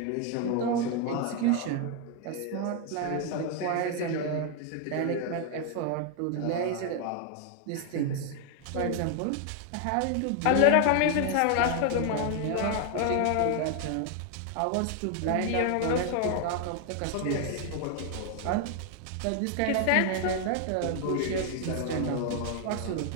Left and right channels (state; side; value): different; both; correlation 0.00